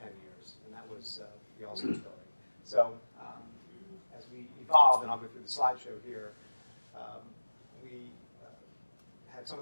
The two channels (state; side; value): inverted; both; correlation -1.00